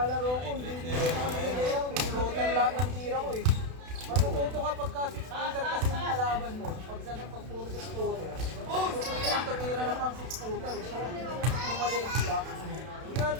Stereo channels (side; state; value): left; late; 32 ms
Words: ko, hindi ako nag-layout. Pinutan lahat ng tira ko eh. Matututo ka pagka 6-footer kasi yung kalaban mo. Pag sa pag puro 6-footer. Tututunan tumira na pang 6-footer eh. Kumalis ka. Hindi